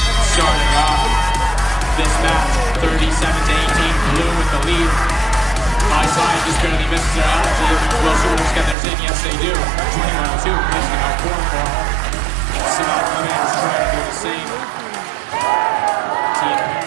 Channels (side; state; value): left; drops out; at 8.8 s